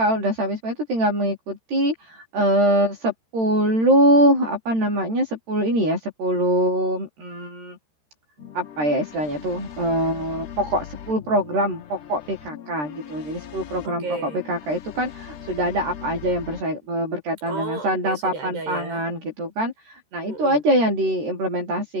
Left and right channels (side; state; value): left; late; 13 ms